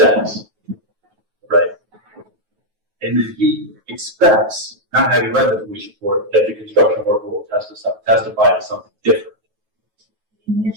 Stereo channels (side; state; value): left; late; 9.3 ms